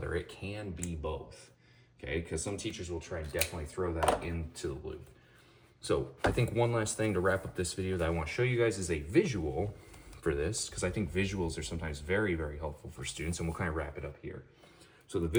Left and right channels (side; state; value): both; identical; correlation 1.00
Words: It can be both, okay? Because some teachers will try and definitely throw that into the loop. So I think one last thing to wrap up this video that I want to show you guys is a visual for this, because I think visuals are sometimes very, very helpful for students, and we'll kind of wrap it up here. So the